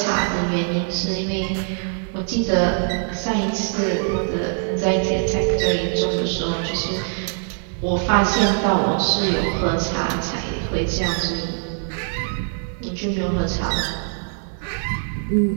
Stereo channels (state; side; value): silent; left; 56 dB below the other